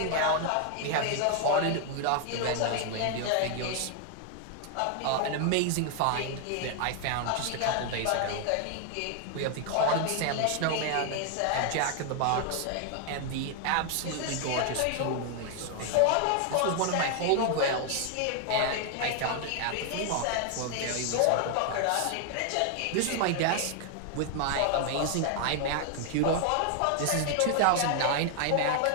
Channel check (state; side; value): different; both; correlation 0.00